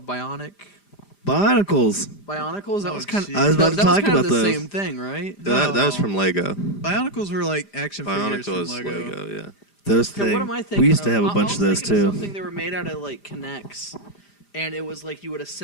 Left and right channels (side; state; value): right; late; 5.0 ms